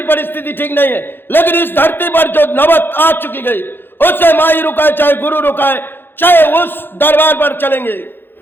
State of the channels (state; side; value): late; right; 0.10 ms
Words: परिस्थिति ठीक नहीं है, लेकिन इस धरती पर जो नौबत आ चुकी गई, उससे माई रुकाए चाहे गुरु रुकाए, चाहे उस दरबार पर चलेंगे,